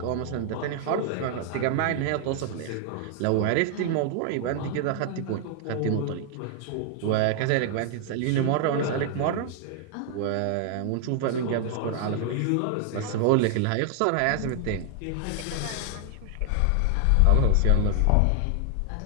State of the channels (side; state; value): both; different; correlation 0.00